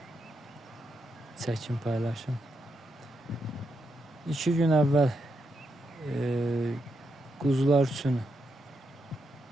çəkim paylaşım. 2 gün əvvəl quzular üçün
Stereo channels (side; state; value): both; normal; correlation 0.82